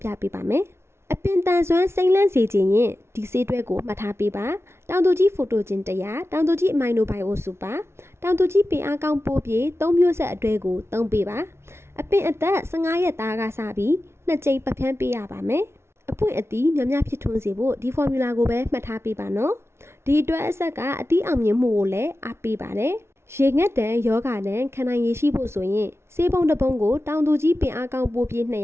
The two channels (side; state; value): left; late; 0.12 ms